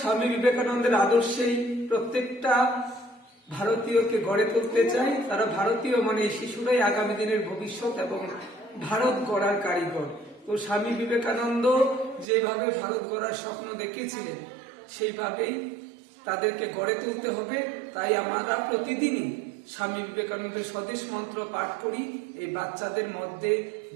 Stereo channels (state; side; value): drops out; left; at 12.2 s